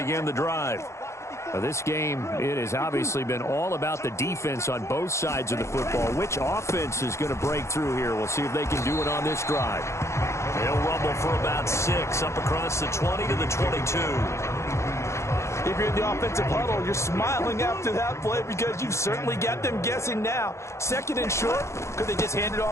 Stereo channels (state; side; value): late; right; 0.14 ms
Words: the drive. Now, this game, it has obviously been all about the defense on both sides of the football. Which offense is going to break through here? We'll see if they can do it on this drive. They'll rumble for about 6 up across the 20 to the 22. If you're in the offensive huddle, you're smiling after that play because you've certainly got them guessing now. Second and short, could they just hand it